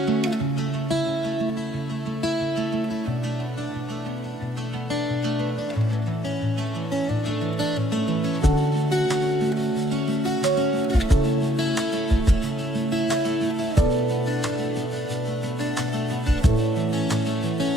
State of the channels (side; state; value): both; normal; correlation 0.65